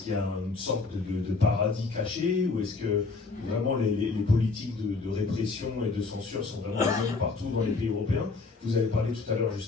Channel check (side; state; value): right; quieter; 4.0 dB